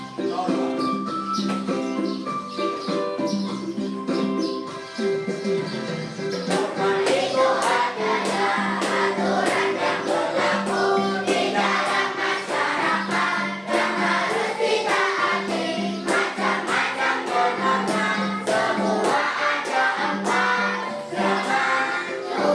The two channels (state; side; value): identical; both; correlation 1.00